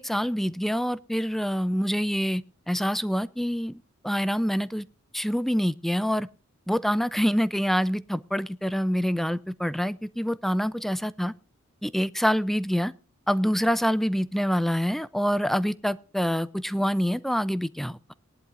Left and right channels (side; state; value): both; normal; correlation 0.98